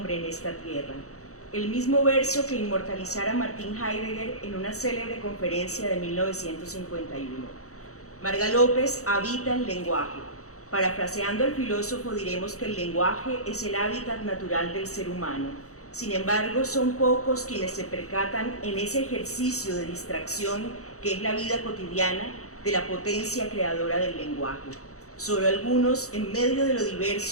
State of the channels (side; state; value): right; late; 0.65 ms